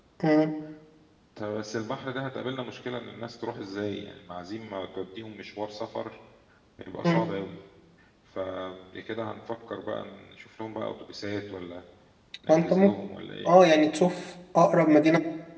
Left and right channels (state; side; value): identical; both; correlation 1.00